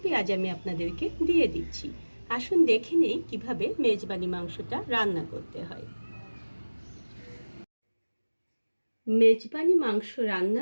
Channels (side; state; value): both; inverted; correlation -1.00